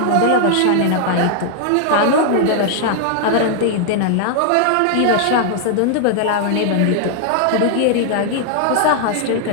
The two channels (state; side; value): different; both; correlation 0.00